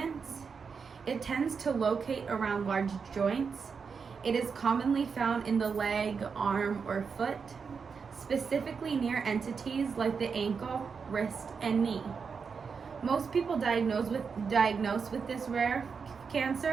It tends to locate around large joints. It is commonly found in the leg, arm, or foot, specifically near entities like the ankle, wrist, and knee. Most people diagnosed with this rare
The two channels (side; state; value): left; quieter; 5.7 dB